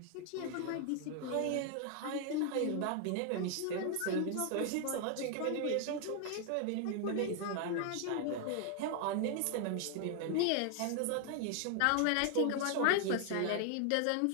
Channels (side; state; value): both; different; correlation 0.00